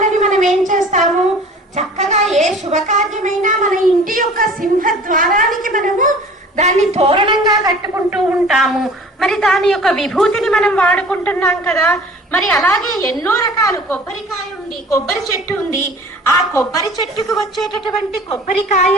మనం ఏం చేస్తాము, చక్కగా ఏ శుభకార్యమైనా మన ఇంటి యొక్క సింహద్వారానికి మనము దాన్ని తోరణంగా కట్టుకుంటూ ఉంటాము. మరి దాని యొక్క విభూతిని మనం వాడుకుంటున్నాం కదా. మరి అలాగే ఎన్నో రకాలు కొబ్బరికాయ ఉంది, కొబ్బరి చెట్టు ఉంది. ఆ కొబ్బరి చెట్టుకు వచ్చేటటువంటి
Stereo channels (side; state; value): both; normal; correlation 0.46